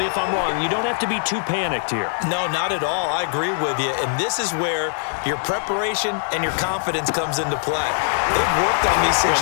if I'm wrong. You don't have to be too panicked here. No, not at all. I agree with you. And this is where your preparation and your confidence comes into play. They've worked on these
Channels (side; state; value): right; silent; digital silence